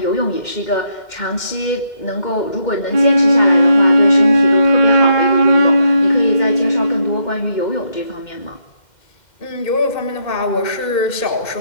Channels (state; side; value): late; right; 2.1 ms